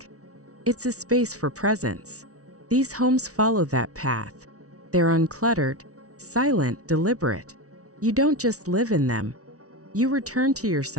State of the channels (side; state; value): left; late; 0.66 ms